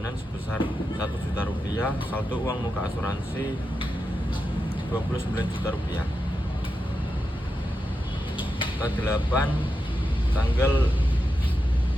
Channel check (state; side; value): normal; both; correlation 0.88